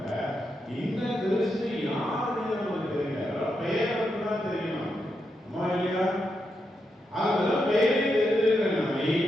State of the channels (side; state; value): both; normal; correlation 0.84